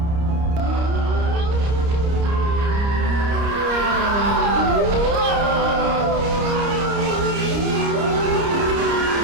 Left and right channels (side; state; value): left; late; 30 ms